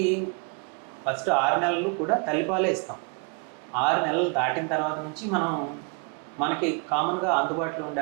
ఫస్ట్ 6 నెలలు కూడా తల్లిపాలే ఇస్తాం. 6 నెలలు దాటిన తర్వాత నుంచి మనకి కామన్గా అందుబాటులో ఉండే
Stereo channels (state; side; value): quieter; left; 34.7 dB